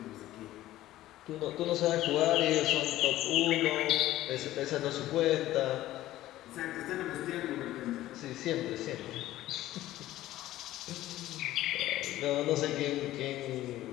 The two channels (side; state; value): right; quieter; 15.0 dB